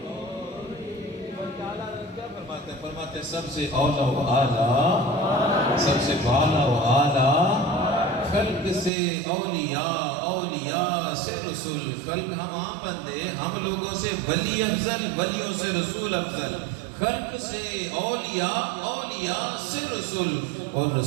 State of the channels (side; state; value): left; drops out; at 8.9 s